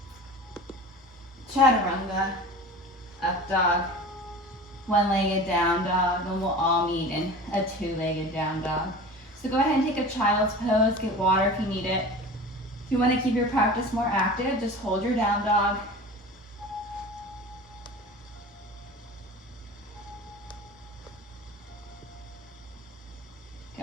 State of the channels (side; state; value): both; normal; correlation 0.36